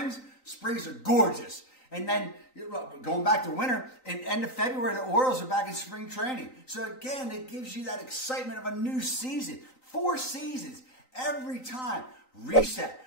are gorgeous. And then going back to winter, in end of February, the Orioles are back in spring training. So again, it gives you that excitement of a new season. 4 seasons every time. Reset.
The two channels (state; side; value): late; right; 3.9 ms